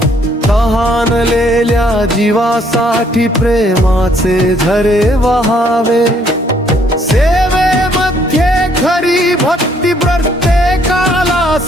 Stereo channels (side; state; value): both; normal; correlation 0.66